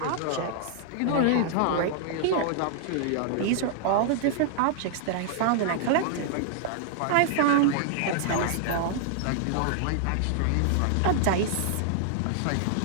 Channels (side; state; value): both; different; correlation -0.01